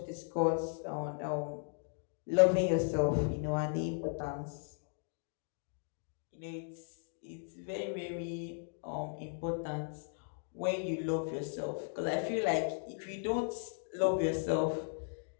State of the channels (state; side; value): silent; right; digital silence